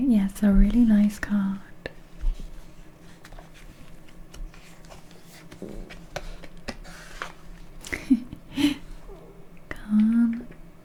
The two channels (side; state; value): both; identical; correlation 1.00